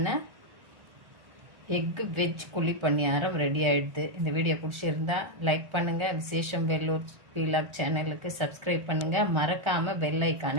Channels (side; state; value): left; late; 1.4 ms